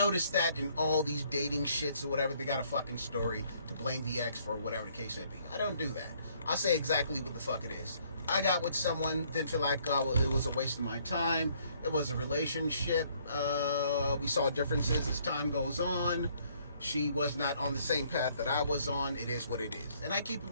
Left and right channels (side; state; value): both; inverted; correlation -0.65